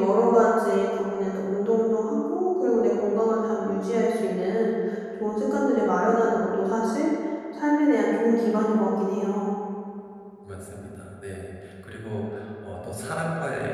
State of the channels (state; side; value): identical; both; correlation 1.00